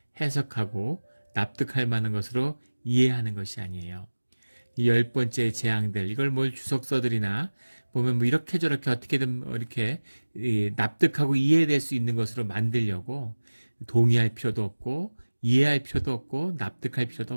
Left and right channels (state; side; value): inverted; both; correlation -1.00